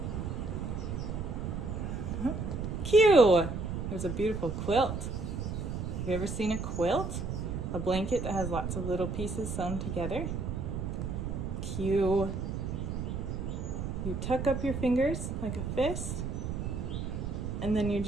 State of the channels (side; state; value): right; noise; rumble, 3 dB below the sound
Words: Q. There's a beautiful quilt. Have you ever seen a quilt? A blanket that has lots of little pieces sewn together. Q. You tuck up your fingers like a fist, and then you